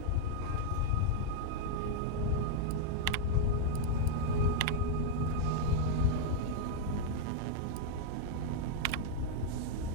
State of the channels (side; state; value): both; different; correlation 0.00